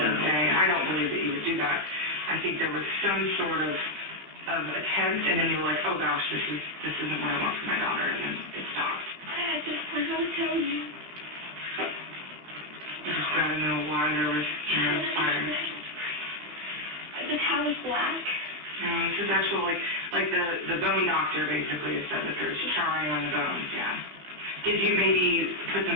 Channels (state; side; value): late; left; 15 ms